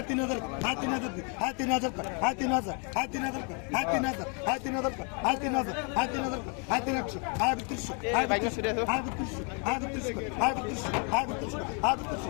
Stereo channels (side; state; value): right; quieter; 36.7 dB